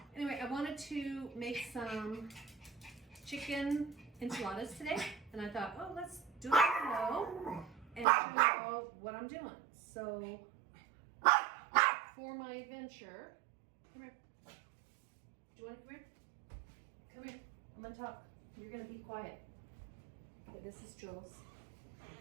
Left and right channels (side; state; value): left; drops out; at 8.1 s